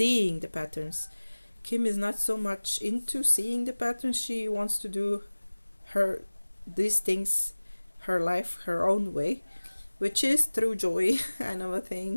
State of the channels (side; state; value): both; inverted; correlation -1.00